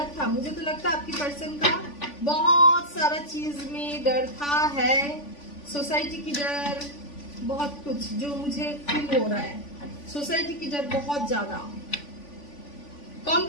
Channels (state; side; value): late; right; 3.5 ms